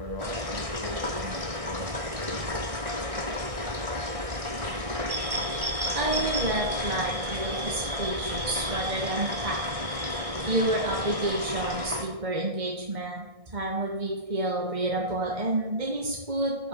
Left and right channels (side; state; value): left; late; 1.6 ms